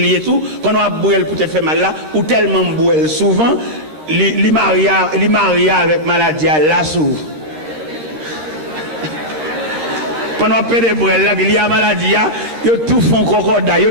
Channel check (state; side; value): late; left; 13 ms